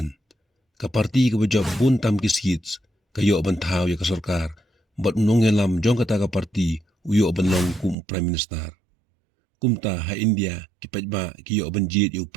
Ka parti ka bajab buntam ki seats kayo bantaw ya ka sarkar bat nongelam jong kata ka parti uyo banlong kum prime minister. Kumta ha India ki paidbah ki yo banjid yo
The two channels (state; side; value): drops out; left; at 8.0 s